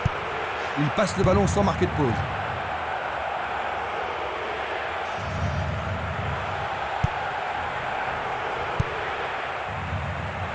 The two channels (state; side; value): identical; both; correlation 1.00